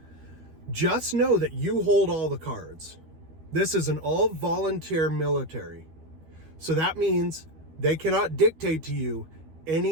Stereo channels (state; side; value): late; left; 13 ms